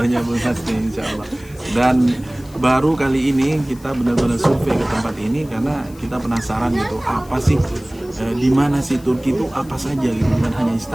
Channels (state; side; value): noise; left; hiss, 24 dB below the sound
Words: Bu Hasni insyaallah. Dan baru kali ini kita benar-benar survei ke tempat ini karena kita penasaran gitu apa sih di mana sih Turki itu apa saja gitu, bukan hanya